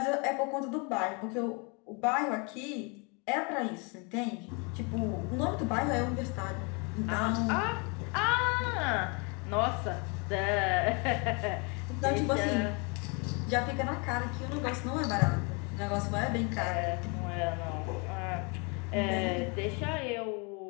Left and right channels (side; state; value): right; quieter; 32.2 dB